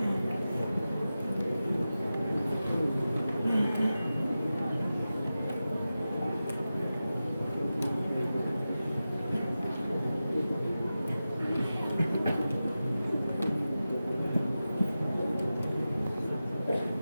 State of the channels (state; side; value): inverted; both; correlation -0.93